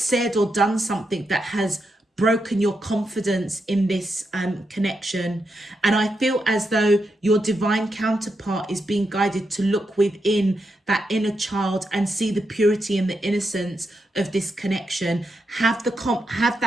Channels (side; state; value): both; normal; correlation 0.84